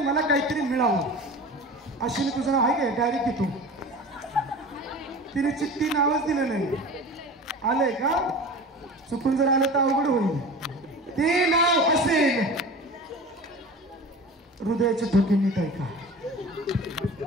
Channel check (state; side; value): normal; both; correlation 0.36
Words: मला काहीतरी मिळावं. अश्विनी तुझं नाव आहे काय? डायरेक्ट येतो. तिने चिठ्ठी नावच दिलं नाही. आलंय का? चुकून जर आलं तर अवघड होईल. ते नाव असेल हृदयाचे ठोके नीट ऐका.